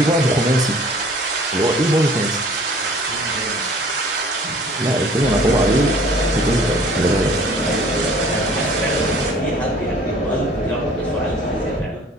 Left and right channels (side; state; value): both; normal; correlation 0.52